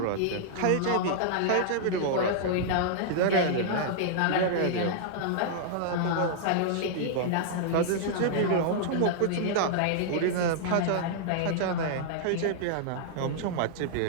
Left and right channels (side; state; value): both; different; correlation -0.01